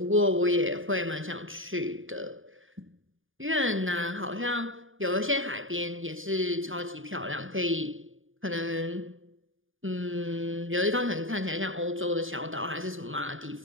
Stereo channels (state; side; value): late; left; 0.58 ms